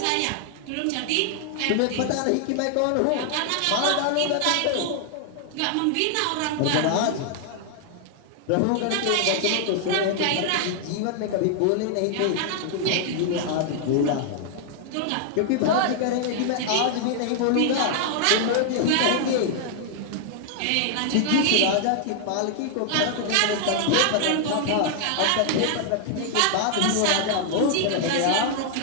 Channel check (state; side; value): different; both; correlation 0.00